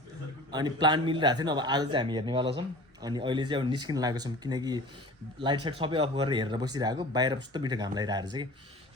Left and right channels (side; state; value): both; normal; correlation 0.41